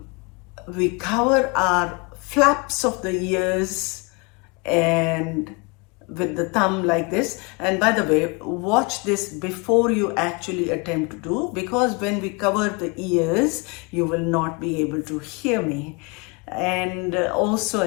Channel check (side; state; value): right; quieter; 29.8 dB